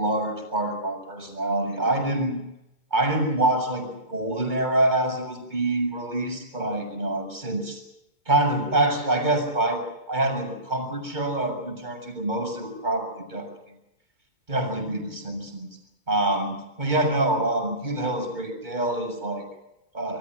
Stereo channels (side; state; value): left; late; 2.2 ms